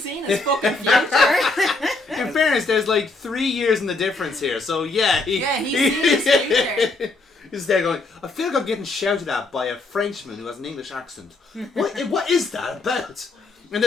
seen his fucking future. In fairness, there's like 3 years in the difference here, so yeah. He's seen his future. He's there going, I feel like I'm getting shouted at by a Frenchman who has an English accent. What is that about? And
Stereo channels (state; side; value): quieter; right; 3.4 dB